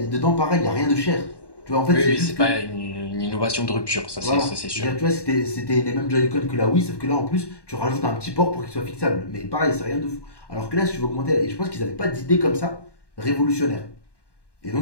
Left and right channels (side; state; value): right; late; 1.1 ms